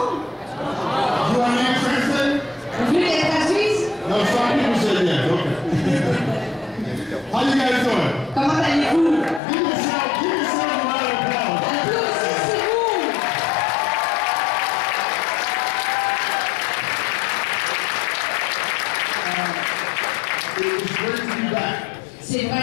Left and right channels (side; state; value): right; drops out; at 9.4 s